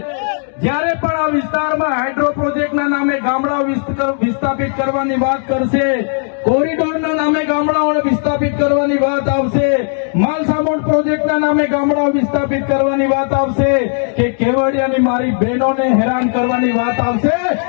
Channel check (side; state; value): right; silent; 59 dB below the other